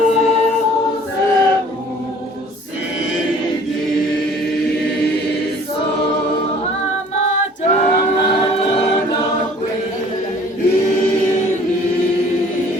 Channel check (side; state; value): both; normal; correlation 0.52